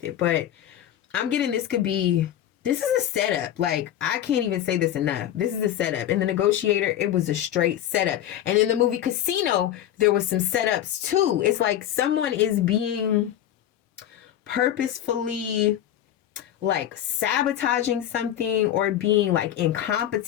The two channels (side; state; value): right; quieter; 11.5 dB